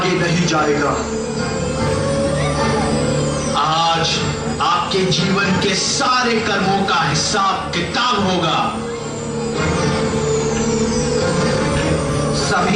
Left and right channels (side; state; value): both; identical; correlation 1.00